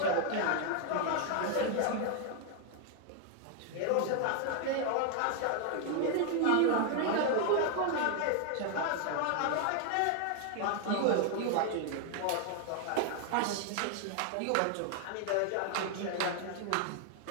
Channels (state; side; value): different; both; correlation 0.00